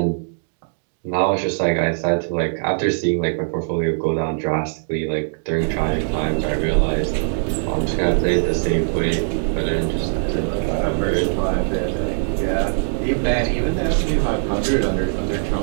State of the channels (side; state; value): left; silent; digital silence